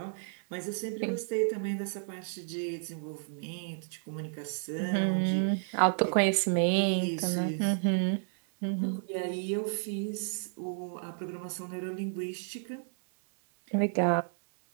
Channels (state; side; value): silent; left; digital silence